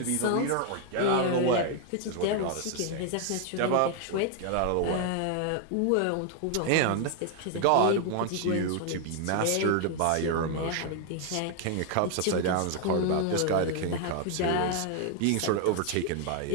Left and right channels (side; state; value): both; different; correlation 0.00